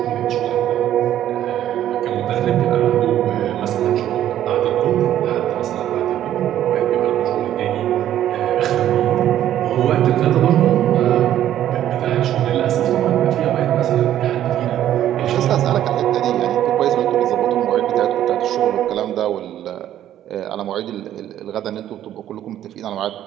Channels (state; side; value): quieter; left; 11.8 dB